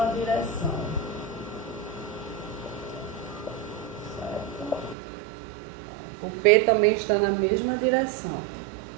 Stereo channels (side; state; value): left; drops out; at 5.0 s